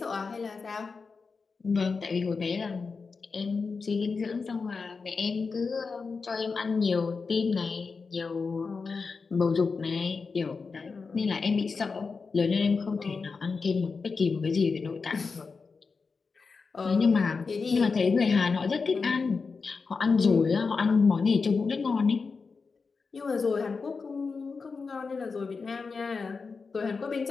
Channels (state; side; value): quieter; right; 4.7 dB